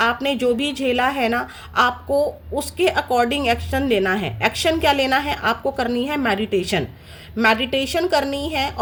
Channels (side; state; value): both; identical; correlation 1.00